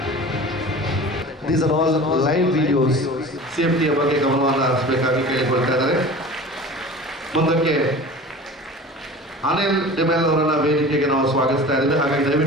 These are all live videos. ಸೇಫ್ಟಿಯ ಬಗ್ಗೆ ಗಮನವನ್ನು ಹರಿಸಬೇಕಾಗಿ ಕೇಳಿಕೊಳ್ತಾ ಇದ್ದಾರೆ. ಮುಂದಕ್ಕೆ ಅನಿಲ್ ಡಿಮೆಲ್ ಅವರನ್ನ ವೇದಿಕೆಗೆ ನಾವು ಸ್ವಾಗತಿಸ್ತಾ ಇದ್ದೇವೆ. ಹಾಗಾಗಿ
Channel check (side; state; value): both; normal; correlation 0.38